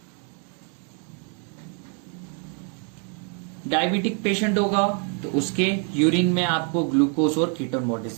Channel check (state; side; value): quieter; left; 39.6 dB